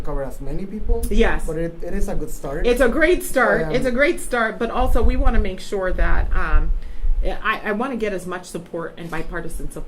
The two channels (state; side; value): identical; both; correlation 1.00